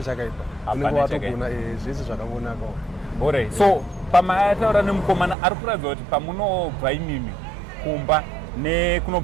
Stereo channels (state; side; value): drops out; left; at 5.4 s